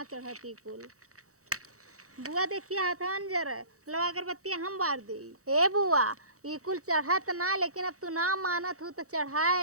चढ़ती कुल। बुआ देखिए हाथन जरा लो अगरबत्ती हम बार दे। ए बुआ ये कुल चढ़त ना, लेकिन अब तू ना मानत हो तो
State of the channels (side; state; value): left; late; 0.65 ms